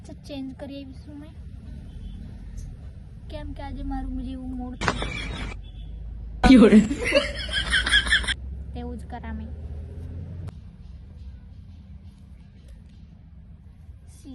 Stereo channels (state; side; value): identical; both; correlation 1.00